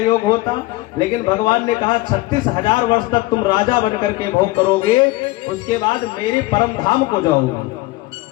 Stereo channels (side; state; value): right; quieter; 19.3 dB